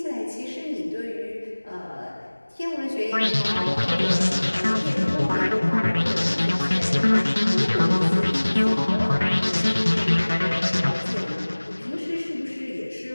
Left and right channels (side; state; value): both; inverted; correlation -1.00